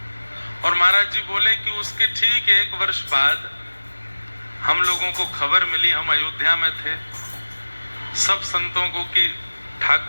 और महाराज जी बोले कि उसके ठीक 1 वर्ष बाद हम लोगों को खबर मिली, हम अयोध्या में थे, सब संतों को कि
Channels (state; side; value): inverted; both; correlation -1.00